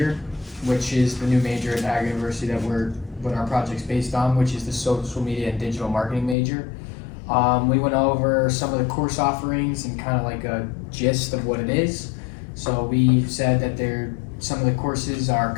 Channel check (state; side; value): drops out; right; at 6.4 s